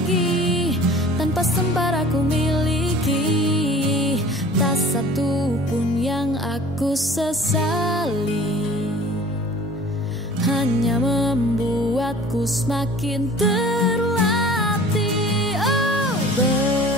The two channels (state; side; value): normal; both; correlation 0.45